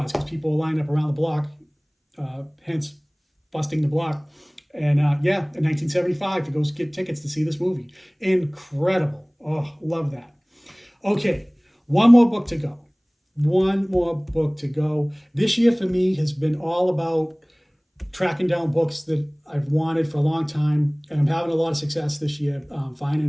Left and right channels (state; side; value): identical; both; correlation 1.00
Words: because people line up around the block, hence busting the block. And yeah, in 1975 to go get tickets to see this movie. Incredible. Oh, love that. Okay, one more book to go. One more book to go. This year for me has been all about tracking down books that I've wanted for a long time, and I'm having a lot of success this year